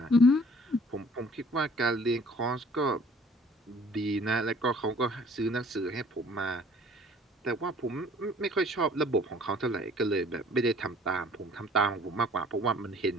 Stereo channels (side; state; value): both; normal; correlation 0.54